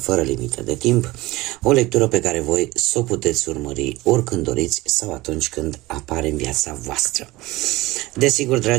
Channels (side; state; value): left; quieter; 19.7 dB